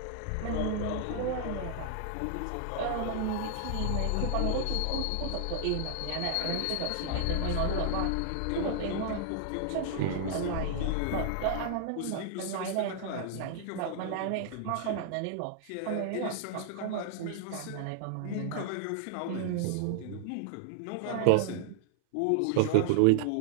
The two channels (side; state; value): both; different; correlation -0.01